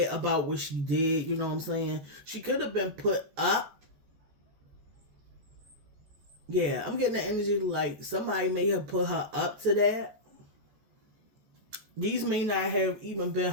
about what she did, you know what I'm saying? She could have been put up. Yeah, I'm getting the energy like somebody may have put her up to that. These may not have even been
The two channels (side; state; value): left; late; 14 ms